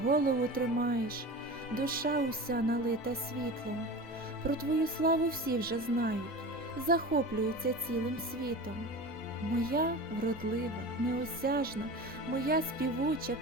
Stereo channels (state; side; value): normal; both; correlation 0.31